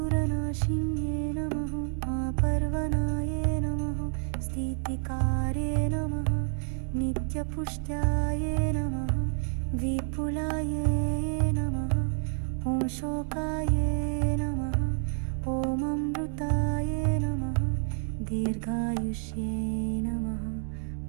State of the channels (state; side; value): silent; left; 59 dB below the other